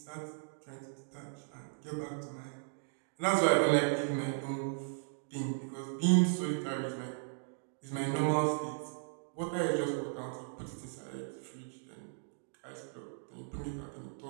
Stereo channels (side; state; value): left; silent; digital silence